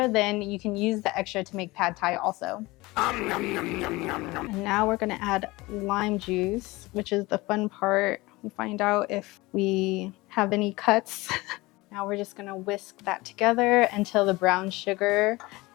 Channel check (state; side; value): quieter; right; 21.4 dB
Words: then you can use the extra to make pad thai also. And now we're gonna add lime juice, which is the fun part. We find out if we have any cuts. Now we're just gonna whisk that together until the brown sugar